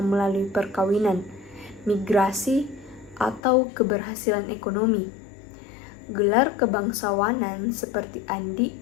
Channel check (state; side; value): drops out; right; at 3.4 s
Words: melalui perkawinan, migrasi, atau keberhasilan ekonomi. Gelar kebangsawanan seperti Andi